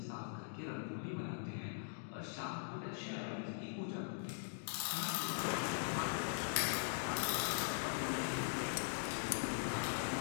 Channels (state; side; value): silent; right; digital silence